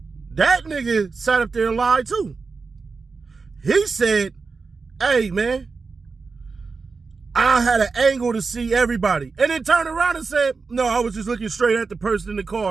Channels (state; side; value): quieter; left; 4.5 dB